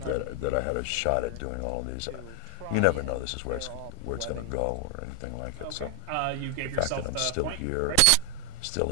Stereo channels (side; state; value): both; different; correlation 0.00